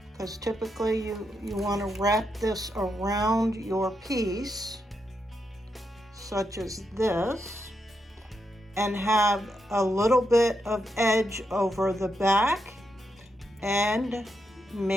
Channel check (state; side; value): normal; both; correlation 0.83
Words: because typically you want to wrap this around your piece, such as this, and have a little bit of edge over the back and